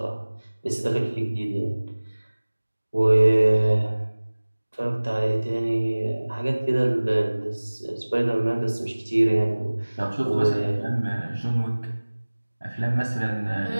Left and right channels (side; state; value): both; inverted; correlation -1.00